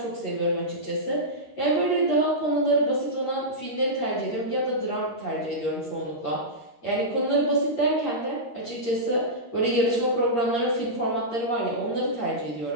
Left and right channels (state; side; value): late; right; 13 ms